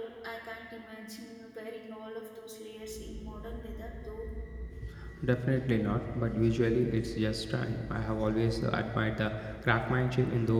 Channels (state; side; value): identical; both; correlation 1.00